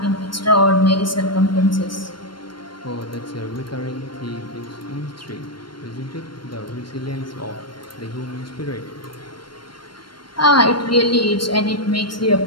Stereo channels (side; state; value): right; late; 0.72 ms